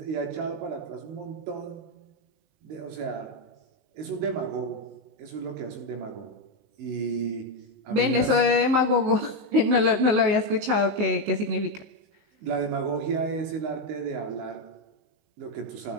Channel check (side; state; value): left; late; 19 ms